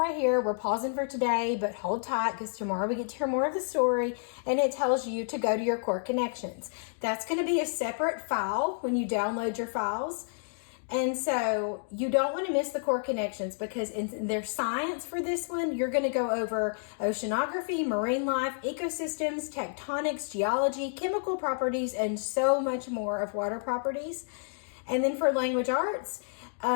here. We're pausing for today, but hold tight because tomorrow we get to hear more of the story. And it tells you to go to your core connections. That's going to be a separate file when you download your files. And so you don't want to miss the core connections because in their science for this one, you're going to go over oceanography, marine life, ecosystems, tectonics, geology, chemical properties, and so much more of water properties. And then for language arts,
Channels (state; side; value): silent; right; digital silence